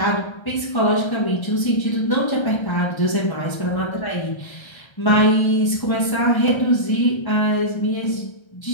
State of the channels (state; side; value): late; right; 1.3 ms